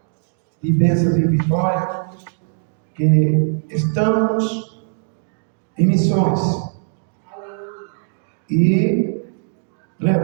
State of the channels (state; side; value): silent; left; digital silence